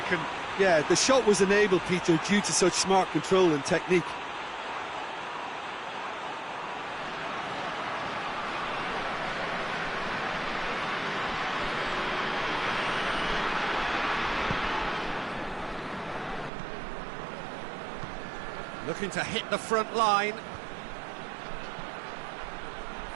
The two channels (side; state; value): left; drops out; at 16.5 s